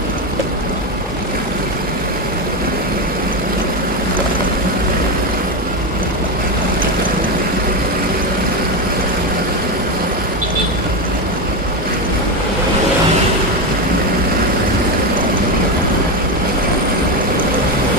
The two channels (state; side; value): normal; both; correlation 0.13